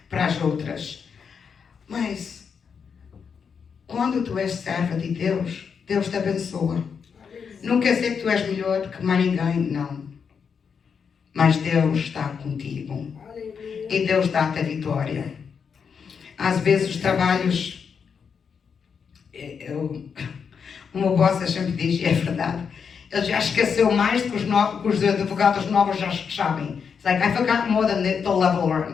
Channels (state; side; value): quieter; right; 6.4 dB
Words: as outras. Mas, quando tu és serva de Deus, Deus te abençoa. Não quer dizer que tu és melhor do que mais ninguém, não. Mas Deus está contigo. E Deus dá-te a vitória. Às vezes os trabalhos... O meu boss sempre diz, e é verdade, ele já esqueceu mais do que os advogados novos já sabem. It's like, I forgot more than the level